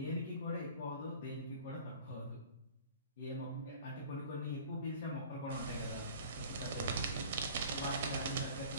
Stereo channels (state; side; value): inverted; both; correlation -0.45